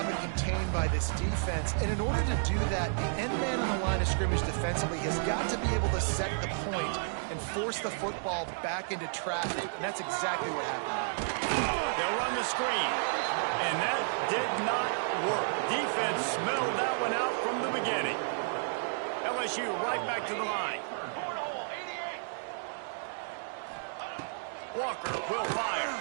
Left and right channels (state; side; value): silent; left; digital silence